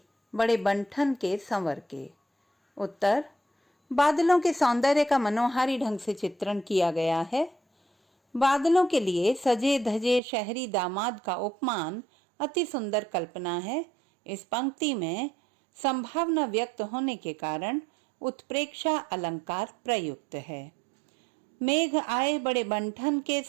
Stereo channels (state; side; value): drops out; left; at 10.2 s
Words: बड़े बंठन के संवर के। उत्तर, बादलों के सौंदर्य का मनोहारी ढंग से चित्रण किया गया है। बादलों के लिए सजे धजे शहरी दामाद का उपमान अति सुंदर कल्पना है। इस पंक्ति में संभावना व्यक्त होने के कारण उत्प्रेक्षा अलंकार प्रयुक्त है। मेघ आए बड़े बंठन के